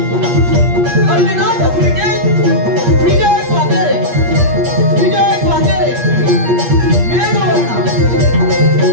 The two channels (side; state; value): left; late; 8.5 ms